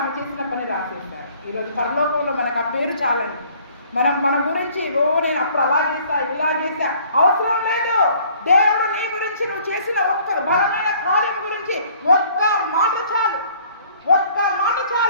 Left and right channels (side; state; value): both; inverted; correlation -0.56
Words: ఆమె చేసిన పని రాసేశారు. ఈరోజు పరలోకంలో మనకు ఆ పేరు చాలండి. మన గురించి నేను అప్పుడు అలా చేస్తా, ఇలా చేస్తా అవసరం లేదు. దేవుడు నీ గురించి, నువ్వు చేసిన ఒక్క బలమైన కార్యం గురించి ఒక్క మాట